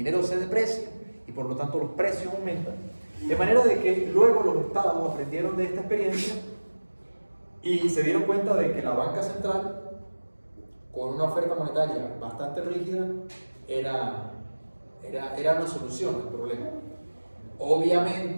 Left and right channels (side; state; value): both; inverted; correlation -1.00